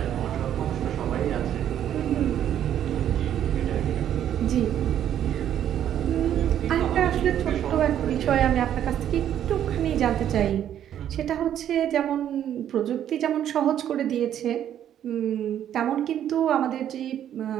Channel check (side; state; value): left; quieter; 10.4 dB